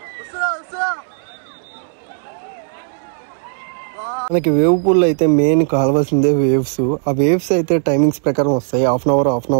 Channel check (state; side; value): silent; left; 68 dB below the other